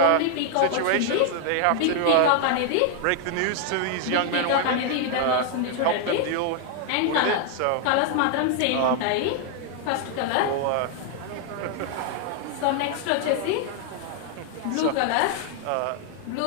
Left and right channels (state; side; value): different; both; correlation 0.00